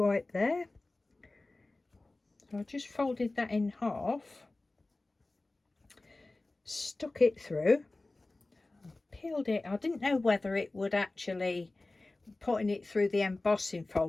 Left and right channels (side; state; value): right; quieter; 3.0 dB